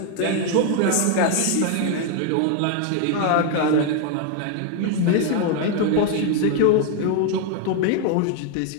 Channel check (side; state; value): both; different; correlation 0.01